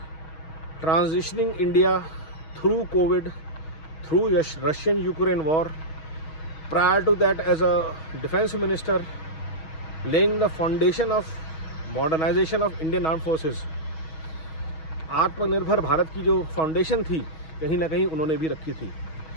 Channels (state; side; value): late; right; 6.3 ms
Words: Transitioning India through COVID, through Russian-Ukraine war, prior to that as a defense minister, laying the foundation of modernization of Indian armed forces. आत्मनिर्भर भारत की जो foundation थी कहीं ना कहीं उन्होंने भी रखी थी,